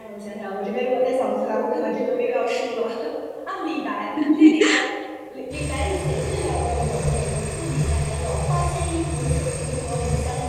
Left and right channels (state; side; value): identical; both; correlation 1.00